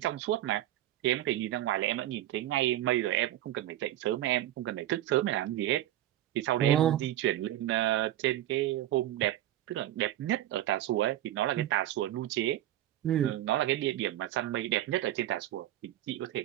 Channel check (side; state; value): left; quieter; 13.5 dB